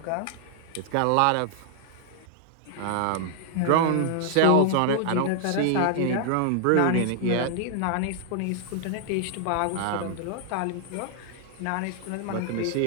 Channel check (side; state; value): both; different; correlation 0.00